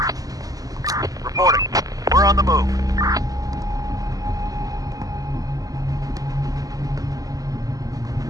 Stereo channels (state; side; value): late; left; 0.17 ms